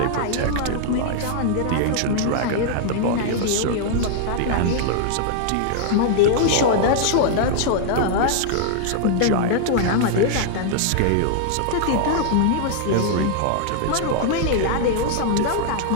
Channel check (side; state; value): both; different; correlation -0.01